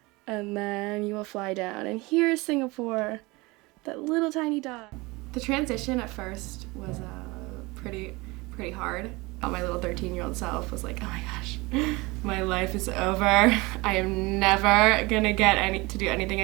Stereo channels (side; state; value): left; quieter; 23.7 dB